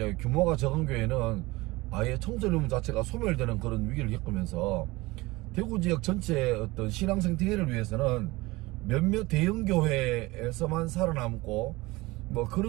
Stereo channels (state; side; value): quieter; left; 21.3 dB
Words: 규모가 적은 교회는 아예 청소년 자체가 소멸되는 그런 위기를 겪으면서, 대구 지역 전체의 어떤 신앙 생태계를 위해서는 몇몇 대형 교회에서만 살아남고, 뭐